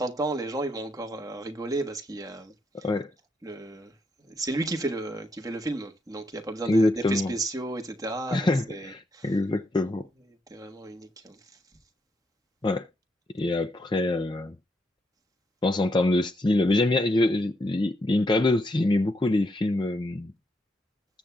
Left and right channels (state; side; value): normal; both; correlation 0.78